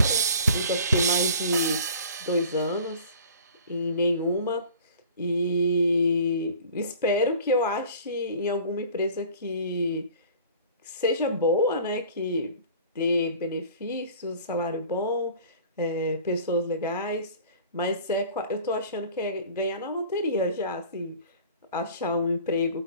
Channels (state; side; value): inverted; both; correlation -0.45